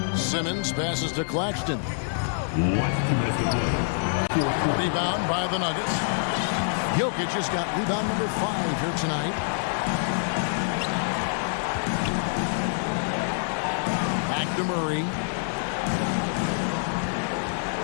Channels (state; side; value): silent; right; digital silence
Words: Simmons passes to Claxton. Rebound by the Nuggets. Jokic has got rebound number 5 here tonight. To Murray.